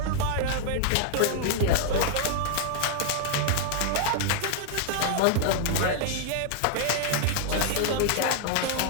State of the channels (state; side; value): different; both; correlation -0.01